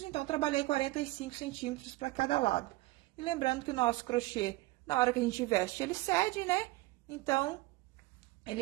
então trabalhei 45 centímetros para cada lado. E lembrando que o nosso crochê, na hora que a gente veste, ele cede, né? Então,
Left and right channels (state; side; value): quieter; left; 20.2 dB